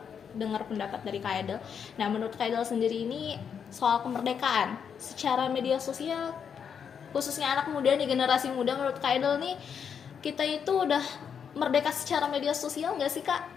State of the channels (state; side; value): quieter; right; 7.3 dB